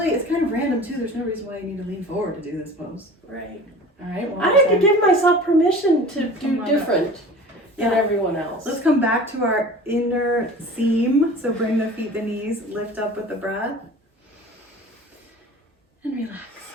kind of random too. There's no reason why you need to lean forward to do this pose. Right. All right. I have to give myself permission to do different than Yeah. everyone else. Let's come back to our inner seam. So bring the feet, the knees, lift up with the breath. And relax.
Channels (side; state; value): both; normal; correlation 0.40